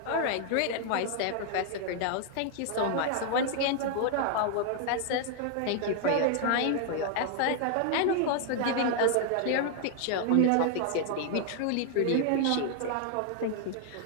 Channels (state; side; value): different; both; correlation 0.00